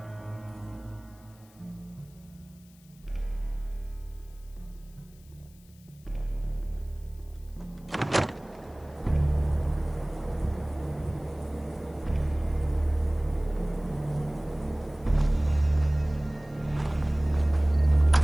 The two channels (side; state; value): left; noise; hiss, 28 dB below the sound